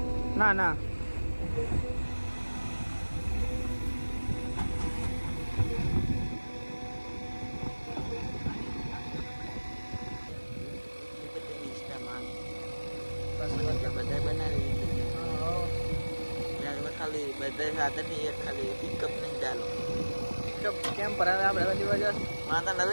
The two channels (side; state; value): both; inverted; correlation -1.00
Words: ના ના બધા બનાવી ખાલી બધા સાધન ની એક ખાલી પિકઅપ નહીં ચાલો પિકઅપ કેમ પર હવે આપણે બધી વજહ માતા લઈ